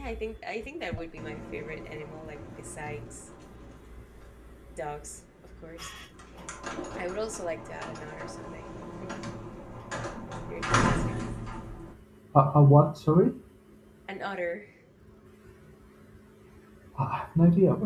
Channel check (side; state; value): both; identical; correlation 1.00